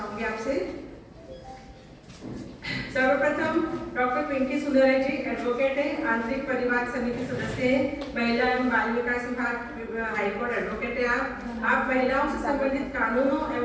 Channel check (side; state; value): both; identical; correlation 1.00